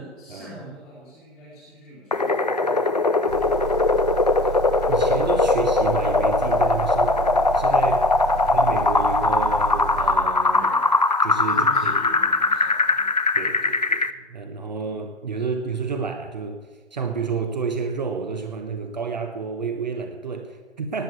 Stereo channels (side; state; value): both; normal; correlation 0.34